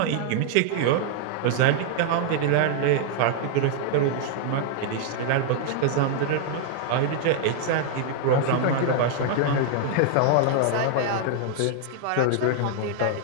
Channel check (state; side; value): different; both; correlation 0.00